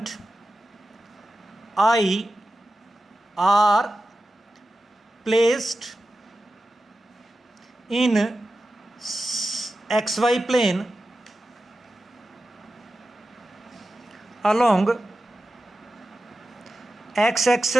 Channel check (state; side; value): normal; both; correlation 0.93